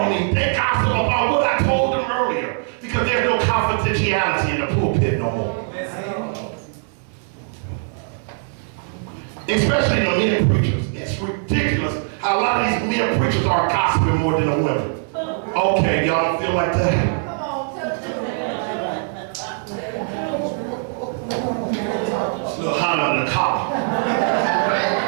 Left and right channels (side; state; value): left; silent; 65 dB below the other